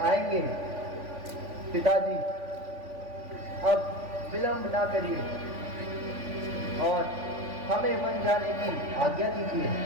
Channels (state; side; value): late; left; 3.5 ms